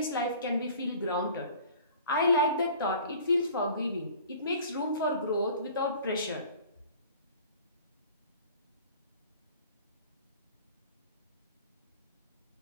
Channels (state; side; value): inverted; both; correlation -0.47